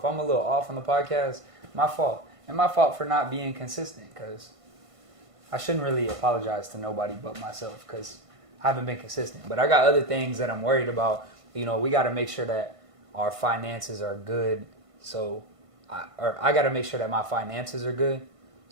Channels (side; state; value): left; late; 1.5 ms